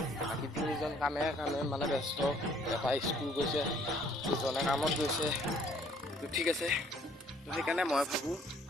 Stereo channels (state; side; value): normal; both; correlation 0.60